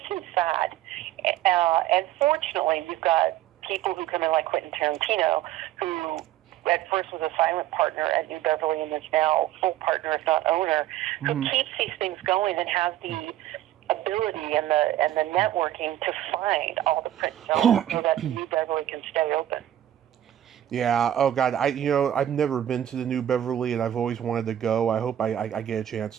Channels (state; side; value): quieter; left; 12.3 dB